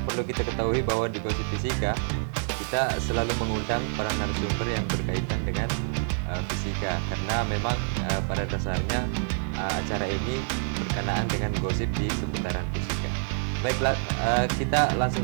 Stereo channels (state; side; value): silent; left; 60 dB below the other